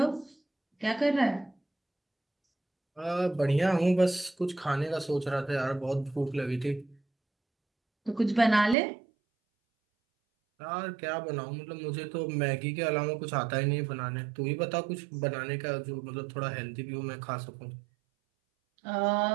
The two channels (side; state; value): left; drops out; at 8.8 s